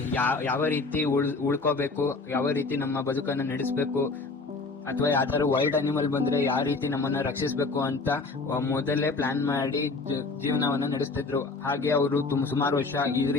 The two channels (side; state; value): right; quieter; 3.9 dB